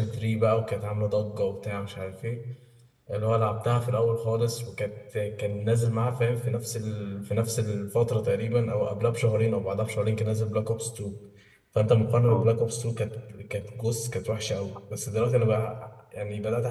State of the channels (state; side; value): identical; both; correlation 1.00